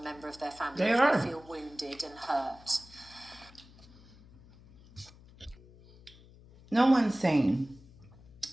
of their family if they feel wounded and hurt. No one's saying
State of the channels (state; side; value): noise; left; hum, 23 dB below the sound